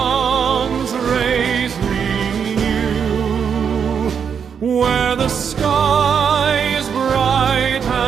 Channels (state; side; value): quieter; left; 7.1 dB